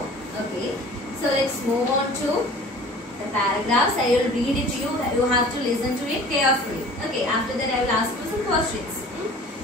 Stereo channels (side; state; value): both; normal; correlation 0.45